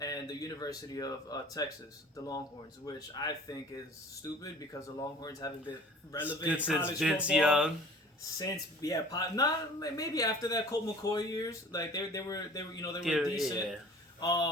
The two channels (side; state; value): both; normal; correlation 0.46